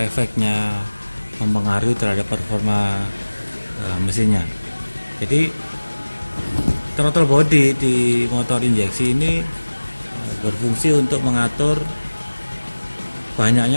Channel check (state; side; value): inverted; both; correlation -1.00